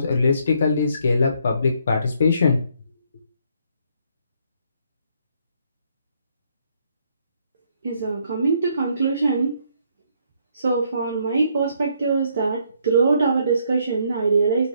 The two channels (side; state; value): both; inverted; correlation -0.69